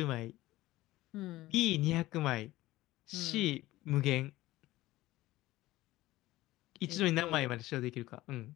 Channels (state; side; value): quieter; right; 17.2 dB